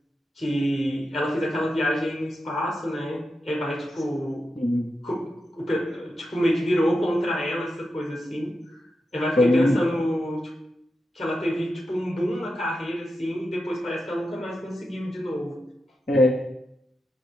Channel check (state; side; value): normal; both; correlation 0.89